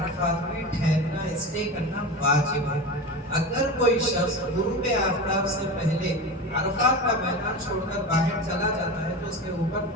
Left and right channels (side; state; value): both; normal; correlation 0.26